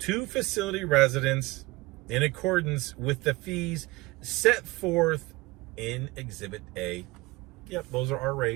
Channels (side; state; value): left; quieter; 21.7 dB